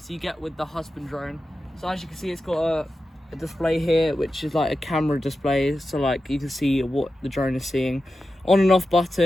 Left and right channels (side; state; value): both; normal; correlation 0.91